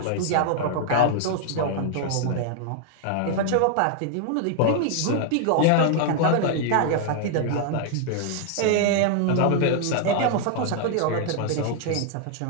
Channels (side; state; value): both; different; correlation 0.00